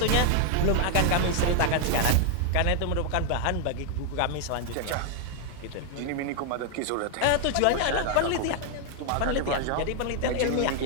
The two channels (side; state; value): both; different; correlation 0.00